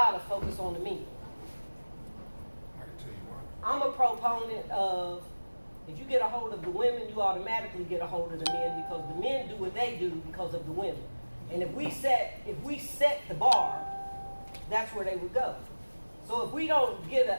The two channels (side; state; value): both; inverted; correlation -1.00